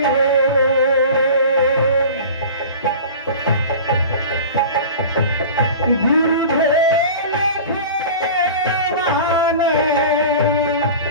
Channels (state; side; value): inverted; both; correlation -0.37